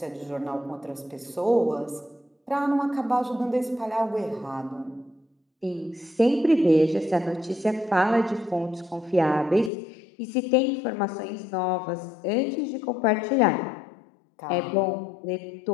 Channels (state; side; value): drops out; right; at 9.7 s